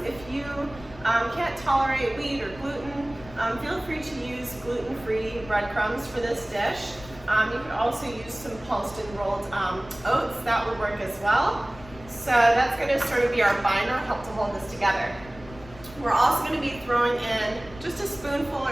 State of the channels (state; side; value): noise; left; rumble, 18 dB below the sound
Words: If you can't tolerate wheat or gluten, feel free to use gluten-free breadcrumbs for this dish. You can also use some pulsed and rolled oats. That would work as well. So that's going to sort of be our binder, help to hold this together. We're also going to be throwing in just a spoonful